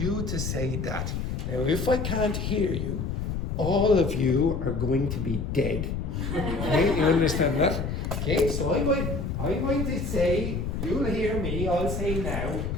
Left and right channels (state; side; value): noise; left; rumble, 3 dB below the sound